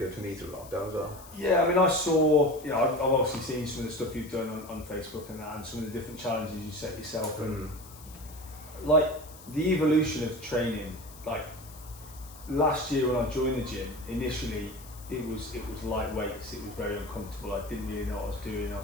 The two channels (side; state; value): left; noise; hiss, 19 dB below the sound